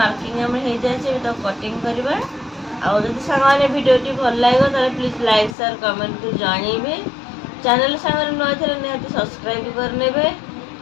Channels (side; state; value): right; drops out; at 5.6 s